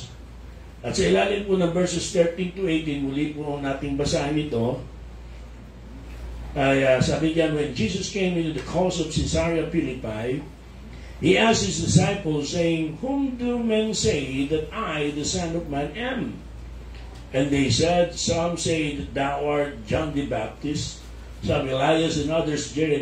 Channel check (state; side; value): identical; both; correlation 1.00